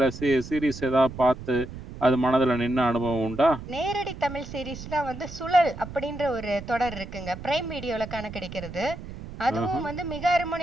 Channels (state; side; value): noise; right; rumble, 12 dB below the sound